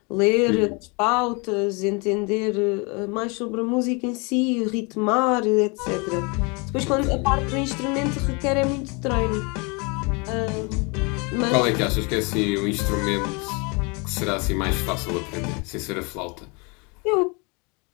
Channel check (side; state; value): right; quieter; 30.5 dB